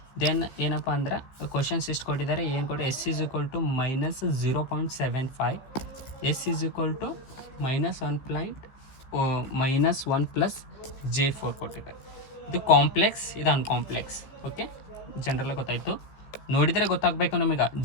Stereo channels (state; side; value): late; right; 15 ms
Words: ದೆನ್ ಏನಪ್ಪ ಅಂದ್ರೆ ಕ್ವಶನ್ಸ್ ಎಷ್ಟು ಕೊಟ್ಟಿದ್ದಾರೆ, ಏನು ಕೊಟ್ಟು S is equal to -0.75, S is equal to -1 plus J4 ಕೊಟ್ಟಿದ್ದಾರೆ. ಇದು ಕಾಂಪ್ಲೆಕ್ಸ್, ಇದು ಅನ್ಕಾಂಪ್ಲೆಕ್ಸ್. ಓಕೆ, ಜನರಲ್ಲ ಗೊತ್ತಾಯಿತು. ನೋಡಿದರೆ ಗೊತ್ತಾಗಬೇಕು ನಮಗೆ.